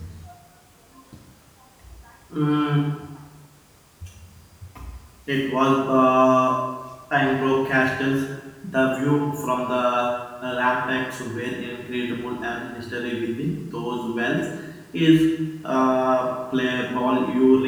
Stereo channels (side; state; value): both; identical; correlation 1.00